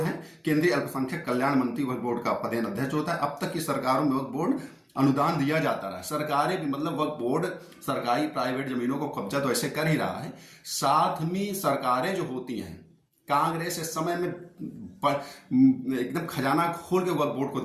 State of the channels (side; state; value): both; identical; correlation 1.00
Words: हैं। केंद्रीय अल्पसंख्यक कल्याण मंत्री वक्फ बोर्ड का पदेन अध्यक्ष होता है। अब तक की सरकारों में वक्फ बोर्ड अनुदान दिया जाता रहा। सरकारें भी, मतलब वक्फ बोर्ड सरकारी प्राइवेट जमीनों को कब्जा तो ऐसे कर ही रहा है, साथ में सरकारें जो होती हैं, कांग्रेस इस समय में एकदम खजाना खोल के वक्फ बोर्ड को